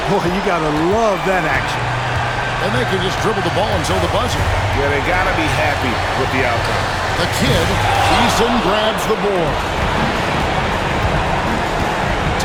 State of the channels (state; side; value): identical; both; correlation 1.00